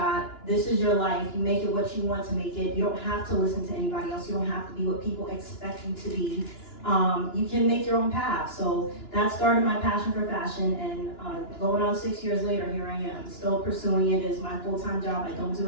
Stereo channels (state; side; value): late; right; 2.9 ms